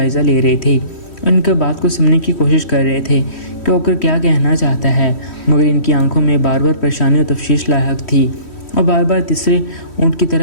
ले रहे थे, उनके बात को सुनने की कोशिश कर रहे थे कि होकर क्या कहना चाहता है, मगर इनकी आंखों में बार बार परेशानी और तफ्शीश लायक थी और बार बार तीसरे ऊँट की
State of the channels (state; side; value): late; right; 3.1 ms